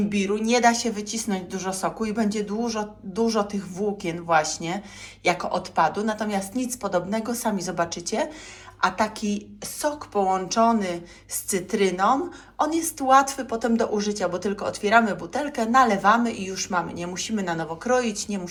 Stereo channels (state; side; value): identical; both; correlation 1.00